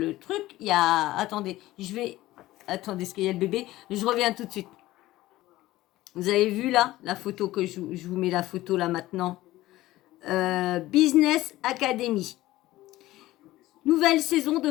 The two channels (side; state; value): right; quieter; 16.6 dB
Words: truc, il y a... Attendez, attendez, est-ce qu'il y a le bébé? Je reviens tout de suite. Vous avez vu là, la photo que je vous mets la photo là maintenant. Business Academy. Nouvelle saison de